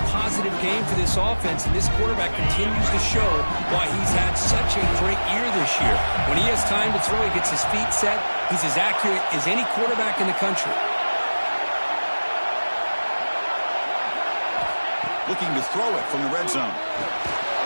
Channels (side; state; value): both; inverted; correlation -1.00